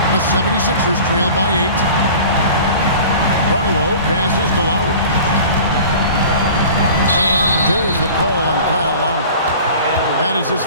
The 76ers trail by 8. Barlow passes to Lowry. And there's the call on Kyle Lowry. That is his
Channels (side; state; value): both; inverted; correlation -0.42